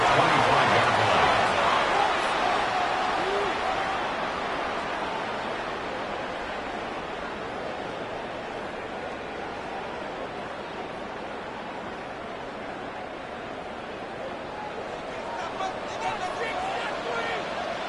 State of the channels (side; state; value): both; identical; correlation 1.00